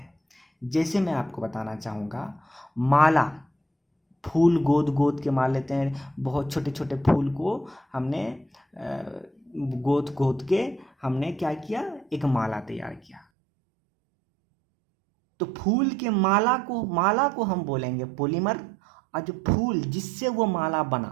जैसे मैं आपको बताना चाहूँगा, माला, फूल गोद गोद के मार लेते हैं, बहुत छोटे छोटे फूल को हमने गोद गोद के हमने क्या किया, एक माला तैयार किया। तो फूल के माला को हम बोलेंगे पॉलीमर, और जो फूल जिससे वो माला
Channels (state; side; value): drops out; left; at 13.2 s